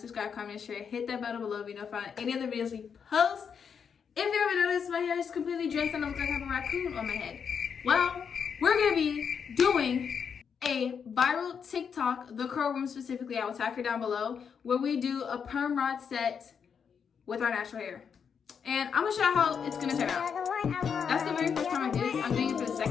comment, share, hit that button below to be notified of any other videos we post. If you ever noticed, my hair is completely dressed and I look like I have a raccoon on my head. Well, we're gonna be doing a viral TikTok, the curl room specifically, I will tag her down below, where we do a perm rod set with our natural hair. And I'm gonna show you how it's gonna turn out. That's the very first time I did it. I'm doing it for the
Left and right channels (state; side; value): quieter; right; 6.8 dB